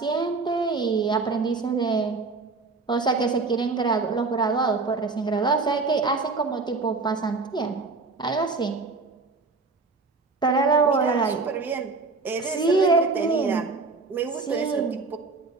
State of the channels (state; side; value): quieter; left; 4.0 dB